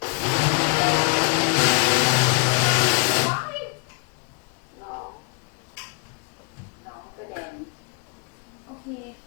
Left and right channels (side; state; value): right; quieter; 32.3 dB